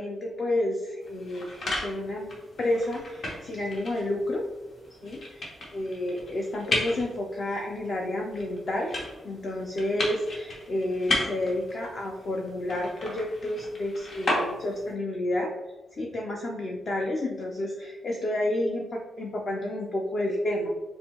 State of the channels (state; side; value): normal; both; correlation 0.84